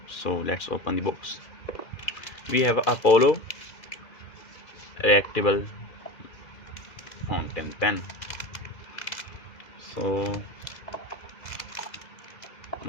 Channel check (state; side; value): late; right; 2.0 ms